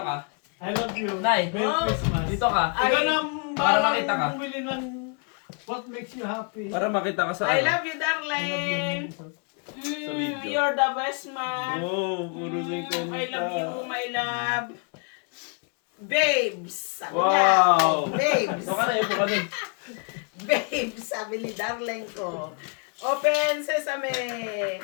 ka. I love you. Nay, Merry oh. Christmas. Dito ka. Ikaw na Para makita ka. bumili ng what makes you happy. Para makita ka sa I ano. love you, darling. video. You're the best man. Oh, puro singkong I love you, my love. Babes. Sabi Wow. niya. Babes. Ito ka na, ito ka na. Babes, sabi ni darling ko. Open sesame.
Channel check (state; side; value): quieter; right; 39.1 dB